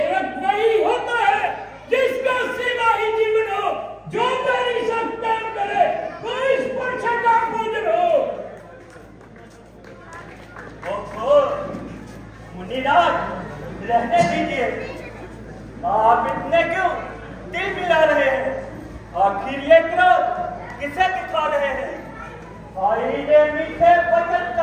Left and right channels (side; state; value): both; identical; correlation 1.00